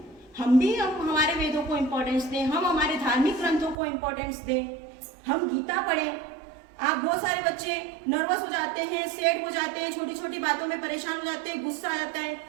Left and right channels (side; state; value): left; drops out; at 3.8 s